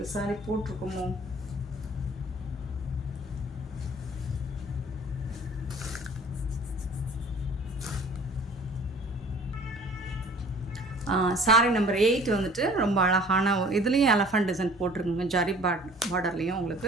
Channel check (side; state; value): both; normal; correlation 0.49